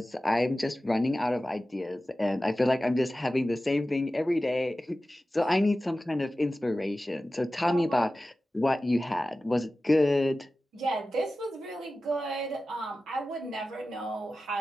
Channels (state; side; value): normal; both; correlation 0.95